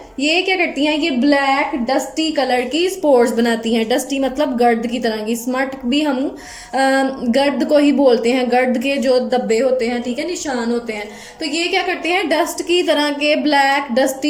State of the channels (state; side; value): identical; both; correlation 1.00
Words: ये क्या करती हैं, ये ब्लैक डस्टी कलर की स्पोर्स बनाती हैं। डस्टी मतलब गर्द की तरह की, स्मट भी हम गर्द को ही बोलते हैं, गर्द के जो धब्बे होते हैं, ठीक है, निशान होते हैं। तो ये क्या करते हैं, डस्ट की तरह के ब्लैक